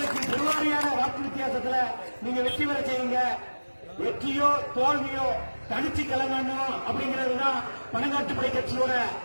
பெருவாரியான வாக்கு வித்தியாசத்துல நீங்க வெற்றி பெற செய்யுங்க. வெற்றியோ தோல்வியோ தனிச்சு கலங்கணும் அப்படிங்கிறதுதான் பணங்காட்டுப்படை கட்சியோட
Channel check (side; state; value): both; inverted; correlation -1.00